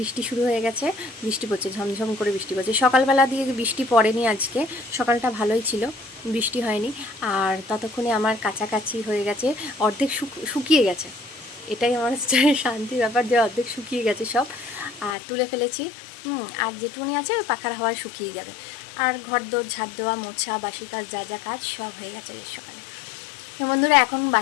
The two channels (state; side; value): drops out; right; at 15.2 s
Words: শুরু হয়ে গেছে। বৃষ্টি পড়ছে, ঝমঝম করে বৃষ্টি পড়ছে। সকালবেলা দিয়ে বৃষ্টি পড়েনি আজকে, সকালটা ভালোই ছিল, বৃষ্টি হয়নি। আর ততক্ষণে আমার কাছাকাছি হয়ে গেছে, অর্ধেক শুকিয়ে গেছে। এটাই আমার শান্তির ব্যাপার যে অর্ধেক শুকিয়ে গেছে সব, আর তুলে ফেলেছি। আর যেটুকুনি আছে ওই পাখার হাওয়ায় শুকিয়ে যাবে। আর ঘর দোর ঝাড় দেওয়া, মোছা, বাসি কাজ, যা যা কাজ সব হয়ে গেছে সকালে। তো বন্ধুরা, এখন